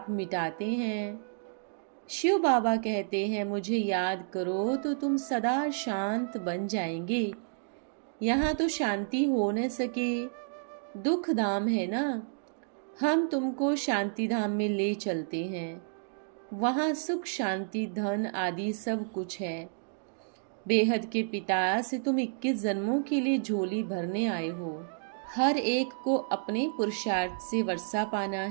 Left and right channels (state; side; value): silent; left; digital silence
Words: मिटाते हैं। शिव बाबा कहते हैं मुझे याद करो तो तुम सदा शांत बन जाएंगे। यहाँ तो शांति हो न सके, दुख धाम है ना। हम तुमको शांति धाम में ले चलते हैं। वहाँ सुख शांति धन आदि सब कुछ है। बेहद के पिता से तुम 21 जन्मों के लिए झोली भरने आए हो। हर एक को अपने पुरुषार्थ से वर्षा पाना